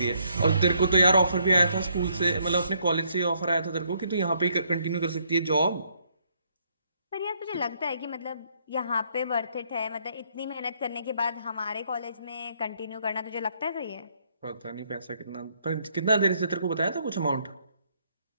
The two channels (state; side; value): inverted; both; correlation -0.70